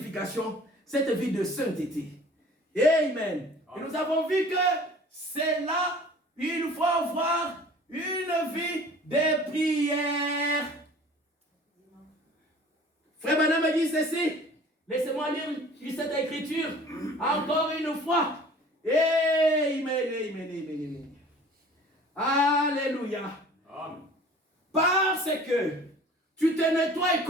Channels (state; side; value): normal; both; correlation 0.47